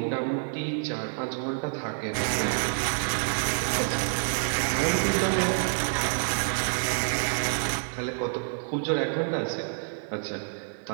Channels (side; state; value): left; silent; digital silence